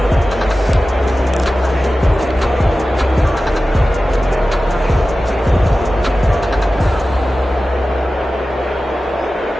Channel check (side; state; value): both; normal; correlation 0.95